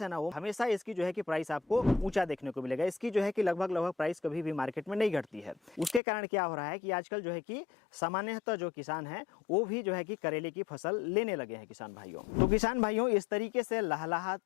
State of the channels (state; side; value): drops out; right; at 6.0 s